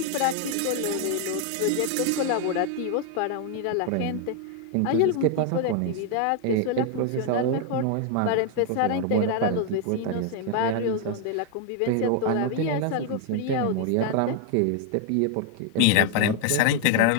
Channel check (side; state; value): both; different; correlation 0.00